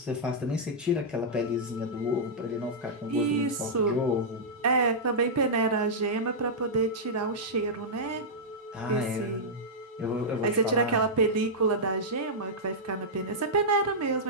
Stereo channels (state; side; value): normal; both; correlation -0.10